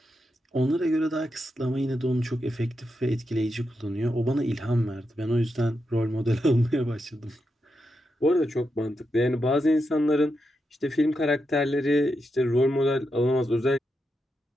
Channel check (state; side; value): normal; both; correlation 0.85